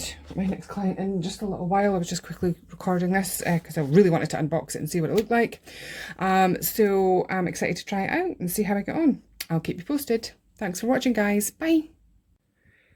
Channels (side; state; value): both; identical; correlation 1.00